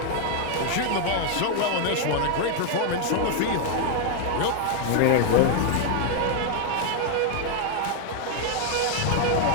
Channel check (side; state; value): both; different; correlation 0.00